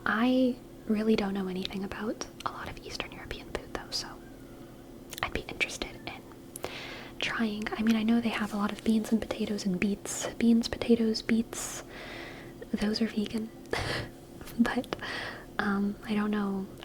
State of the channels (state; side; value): identical; both; correlation 1.00